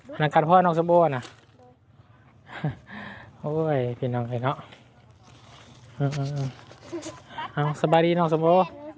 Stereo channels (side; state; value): both; identical; correlation 1.00